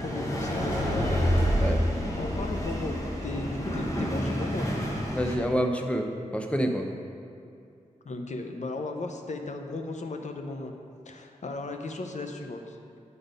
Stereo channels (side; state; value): both; normal; correlation 0.83